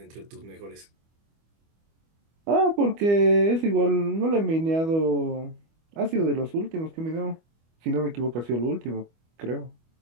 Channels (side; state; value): left; late; 25 ms